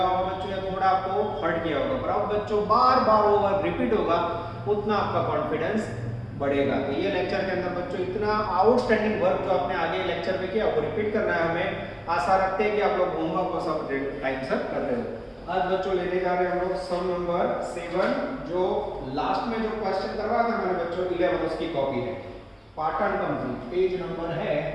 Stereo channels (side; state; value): both; identical; correlation 1.00